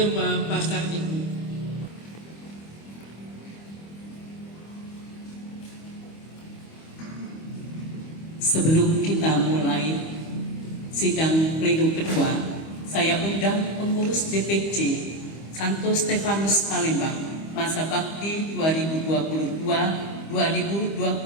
Pasar Ibu. Sebelum kita mulai sidang pleno kedua, saya undang pengurus DPC Santo Stefanus Palembang masa bakti 2022-2025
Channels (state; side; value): late; right; 25 ms